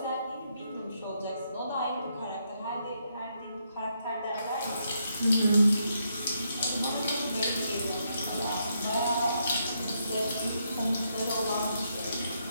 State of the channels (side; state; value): both; inverted; correlation -0.78